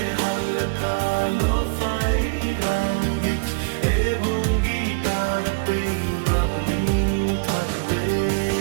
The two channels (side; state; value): left; quieter; 33.7 dB